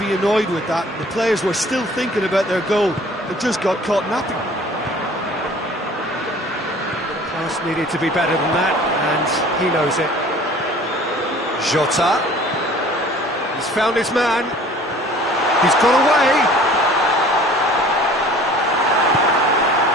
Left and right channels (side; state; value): both; normal; correlation 0.49